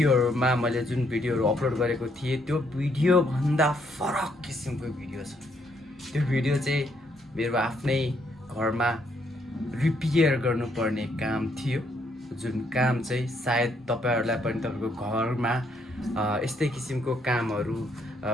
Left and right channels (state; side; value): normal; both; correlation 0.72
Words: मैले जुन भिडियोहरु अपलोड गरेको थिएँ त्यो भिडियो भन्दा फरक किसिमको भिडियो छ। त्यो भिडियो चाहिँ मेरो आफ्नै घरमा रिपेयर गर्नुपर्ने काम थियो, जुन काम चाहिँ सायद तपाईहरुलाई पनि तपाईको घरमा यस्तै किसिमको कामहरु